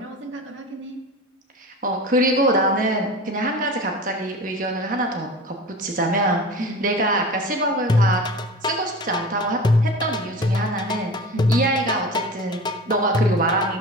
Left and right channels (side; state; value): both; normal; correlation 0.34